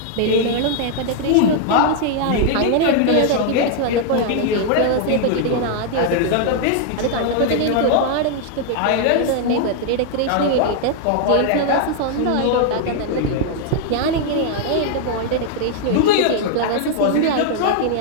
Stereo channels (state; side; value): different; both; correlation 0.00